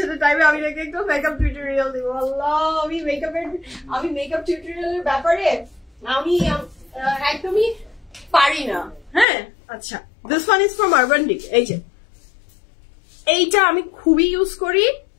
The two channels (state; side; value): drops out; right; at 9.2 s